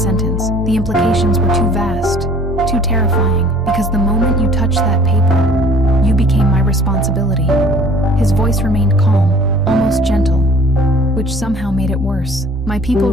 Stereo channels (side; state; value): both; normal; correlation 0.51